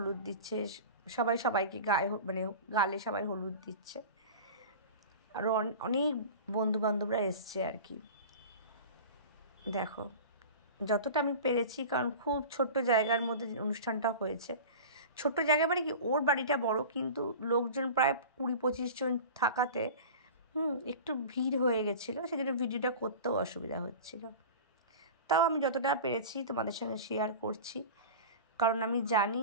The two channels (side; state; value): both; inverted; correlation -0.35